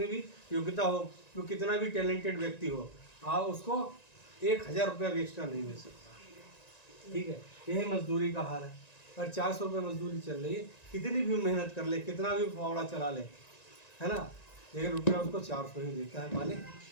भी योग्यता हो, वो कितना भी टैलेंटेड व्यक्ति हो, आप उसको 1,000 रुपया भी एक्स्ट्रा नहीं मिल सकता। ठीक है। यही मजदूरी का हाल है। अगर 400 रुपये मजदूरी चल रही है, कितनी भी मेहनत कर ले, कितना भी फावड़ा चला ले, है ना, लेकिन रुपया उसको 400 ही देता है मालिक,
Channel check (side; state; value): right; late; 1.9 ms